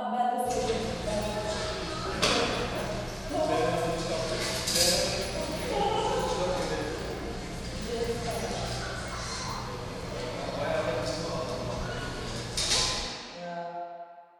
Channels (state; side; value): identical; both; correlation 1.00